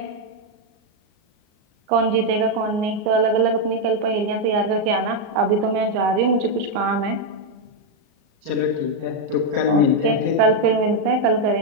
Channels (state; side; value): late; left; 38 ms